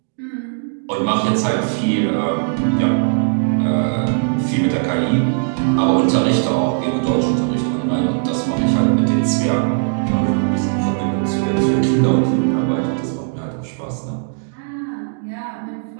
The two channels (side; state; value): left; silent; digital silence